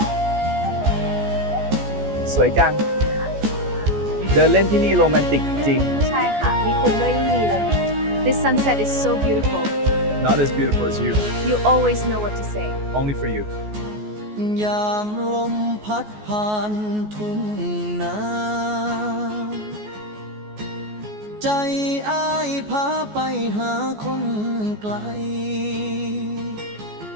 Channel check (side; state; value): left; late; 14 ms